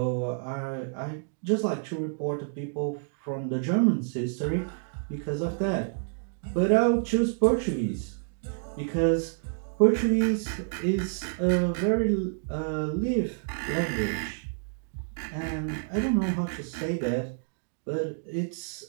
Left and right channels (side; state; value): left; silent; digital silence